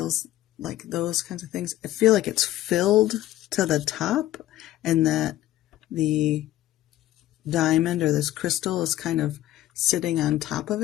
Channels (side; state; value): right; quieter; 14.5 dB